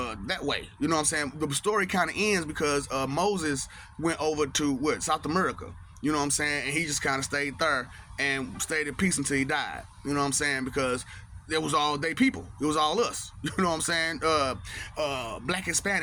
way. You know what I'm saying? The story kind of ends because Moses went over to South America. You know what I'm saying? And he just kind of stayed there and stayed at peace until he died. You know what I'm saying? Because it was all they people. It was all us. You know what I'm saying? Black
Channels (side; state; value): both; identical; correlation 1.00